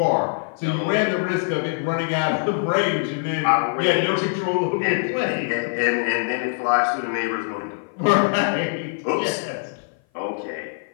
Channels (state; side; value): silent; right; 57 dB below the other